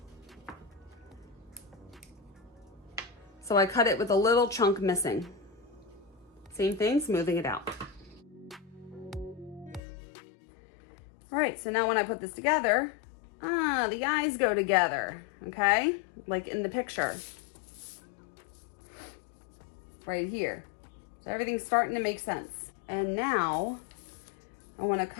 So I cut it with a little chunk missing. Same thing, smoothing it out. All right, so now when I put this together, the eyes go together, okay? Like in the picture. Right here. So everything's starting to make sense. And now I want to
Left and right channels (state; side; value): drops out; right; at 9.8 s